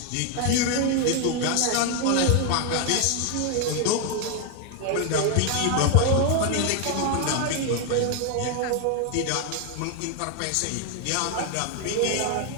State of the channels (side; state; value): both; different; correlation 0.01